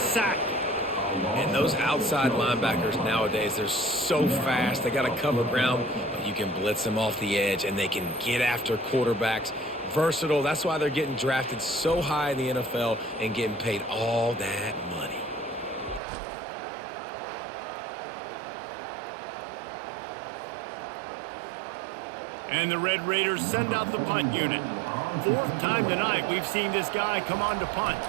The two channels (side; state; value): left; drops out; at 16.0 s